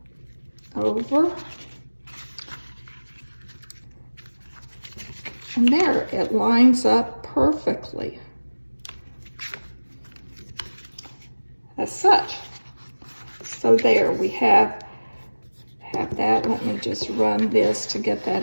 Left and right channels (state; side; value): inverted; both; correlation -1.00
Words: over, and there, it lines up perfectly as such. So there we have that. Let me just run this to get